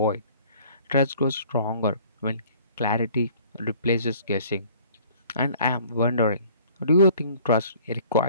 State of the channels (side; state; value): both; inverted; correlation -0.53